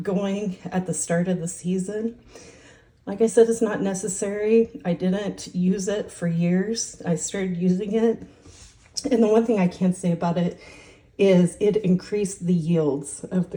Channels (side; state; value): both; identical; correlation 1.00